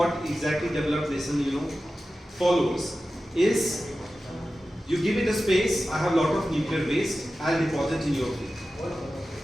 exactly developed nation follows is, you give it a space. I have a lot of nuclear waste. I'll deposit in your field.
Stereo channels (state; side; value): normal; both; correlation 0.94